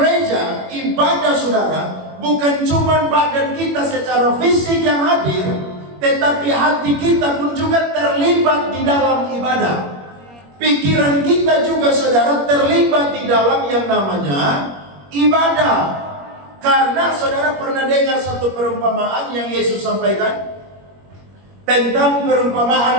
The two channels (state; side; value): late; left; 21 ms